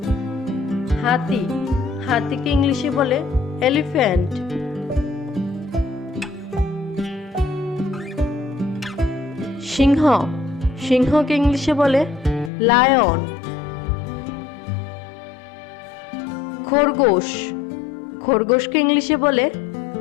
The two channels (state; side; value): drops out; right; at 12.5 s